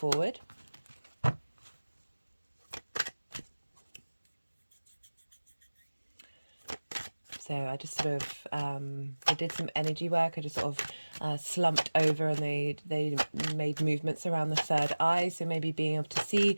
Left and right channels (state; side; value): inverted; both; correlation -1.00